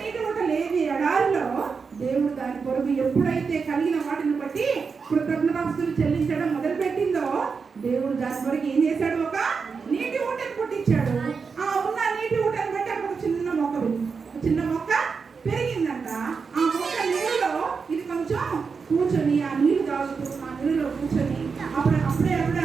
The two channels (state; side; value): quieter; left; 5.3 dB